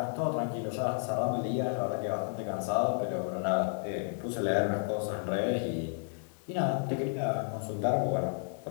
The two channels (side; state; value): right; silent; 56 dB below the other